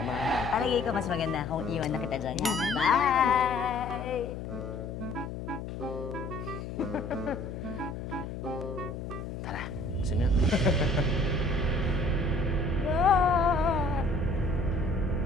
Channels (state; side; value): noise; left; hum, 7 dB below the sound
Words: natin. Palagay ko mas maganda kung iwan na kita dyan. Ha? Bye! Tara, sino yun?